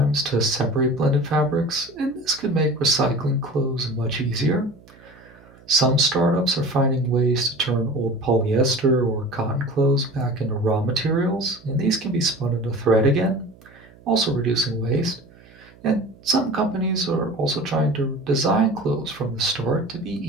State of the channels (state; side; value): noise; right; hum, 25 dB below the sound